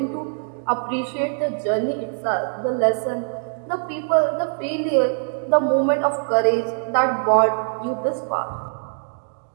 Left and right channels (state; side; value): silent; left; digital silence